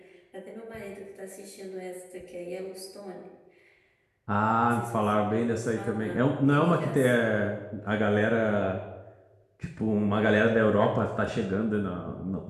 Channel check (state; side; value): identical; both; correlation 1.00